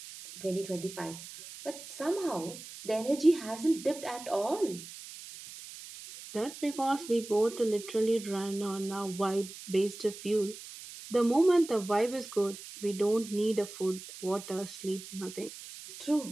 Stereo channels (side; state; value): right; noise; hiss, 14 dB below the sound